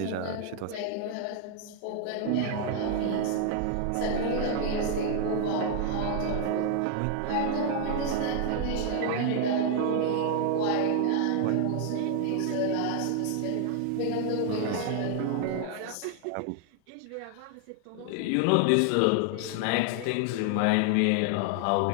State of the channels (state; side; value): different; both; correlation 0.00